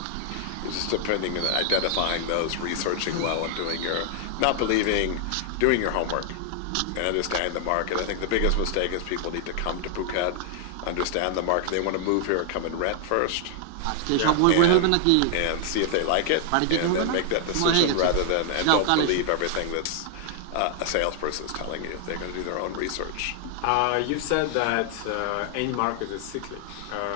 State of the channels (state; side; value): different; both; correlation 0.00